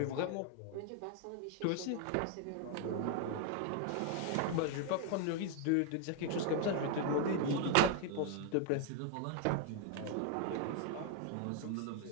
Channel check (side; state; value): both; different; correlation 0.01